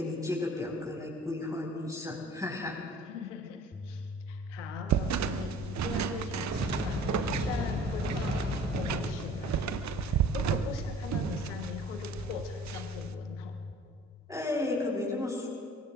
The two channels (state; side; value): normal; both; correlation 0.48